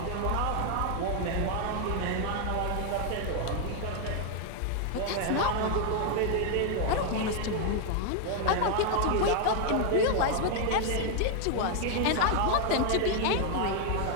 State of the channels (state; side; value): different; both; correlation 0.00